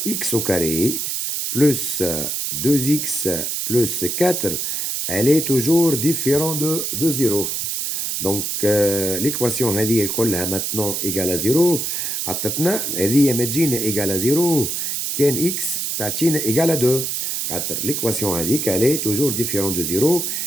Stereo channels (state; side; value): noise; right; hiss, 1 dB below the sound